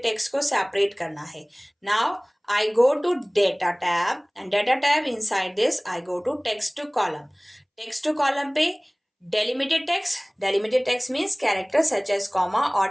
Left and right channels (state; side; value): identical; both; correlation 1.00